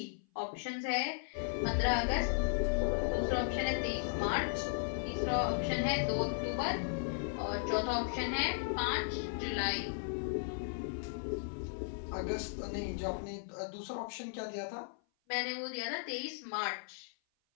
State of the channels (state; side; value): silent; right; 54 dB below the other